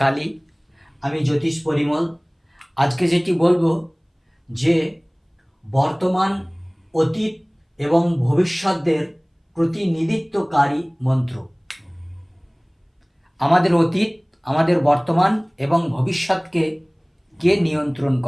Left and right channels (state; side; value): identical; both; correlation 1.00